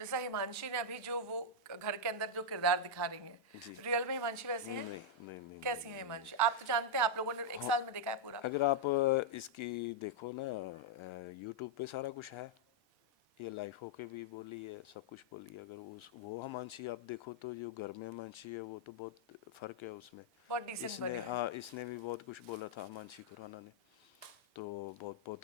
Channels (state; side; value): normal; both; correlation -0.04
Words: हिमांशी ने अभी जो वो घर के अंदर जो किरदार दिखा रही है, जी। रियल में हिमांशी वैसी है? नहीं नहीं नहीं कैसी नहीं, है हिमांशी? आप तो जानते हैं, आप लोगों ने एक साल में देखा है पूरा। अगर आप इसकी देखो ना, यूट्यूब पे सारा कुछ है, ये लाइफ होके भी बोली है, सब कुछ बोली है। अगर उस वो हिमांशी आप देखो तो जो घर में हिमांशी है वो तो बहुत फ़र्क है उसमें। बहुत डिसेंट इसने बनी है। हाँ, इसने भी बहुत कुछ बोला था हिमांशी खुराना ने, तो बहुत